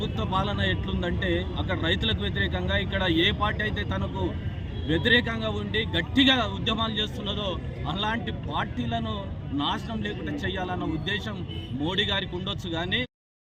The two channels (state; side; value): identical; both; correlation 1.00